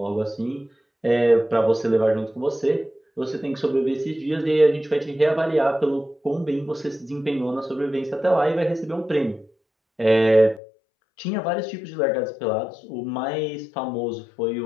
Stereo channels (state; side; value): drops out; right; at 10.6 s